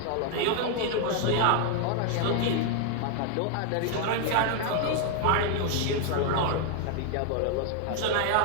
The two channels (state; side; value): different; both; correlation 0.00